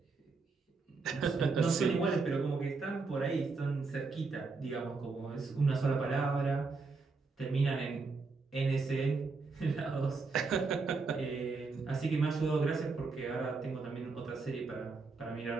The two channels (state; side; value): quieter; left; 4.2 dB